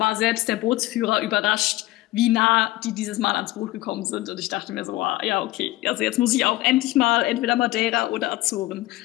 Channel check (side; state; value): right; quieter; 17.8 dB